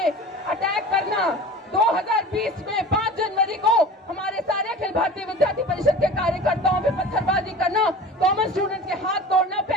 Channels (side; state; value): both; normal; correlation 0.37